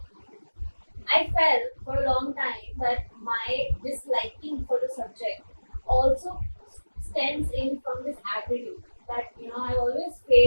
I felt for a long time that my disliking for the subject also stems in from this attitude that I always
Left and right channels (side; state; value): both; inverted; correlation -1.00